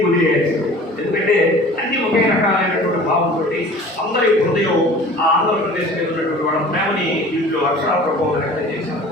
వదిలేయాల్సిందే. ఎందుకంటే అన్ని ఒకే రకాలైనటువంటి భావంతో అందరి హృదయం ఆ ఆంధ్రప్రదేశ్ మీద ఉన్నటువంటి వాళ్ళ ప్రేమని దీంట్లో అక్షరాప్రభావం వ్యక్తం చేశారు.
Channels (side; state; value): both; normal; correlation 0.44